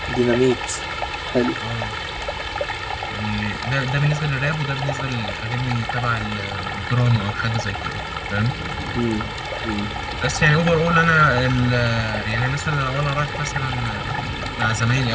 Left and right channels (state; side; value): identical; both; correlation 1.00